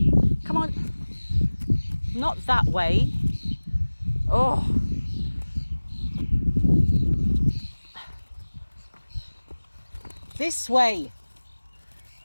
Come on. Not that way. Oh. This way.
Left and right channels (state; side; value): inverted; both; correlation -1.00